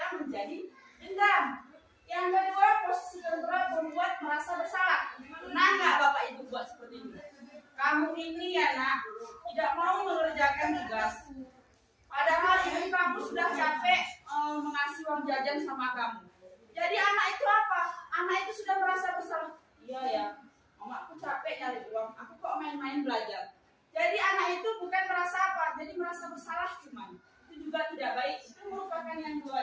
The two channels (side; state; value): both; identical; correlation 1.00